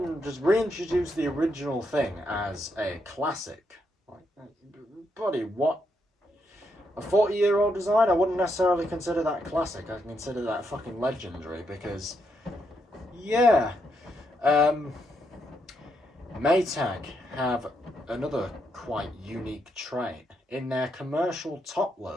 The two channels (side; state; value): both; normal; correlation 0.79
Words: just reintroduce the original thing as a classic. Buddy, what? A 40-year-old design? I wouldn't necessarily consider that classic. I consider that fucking legendary because, yeah. Maytag have another quite unique trait. In their commercial top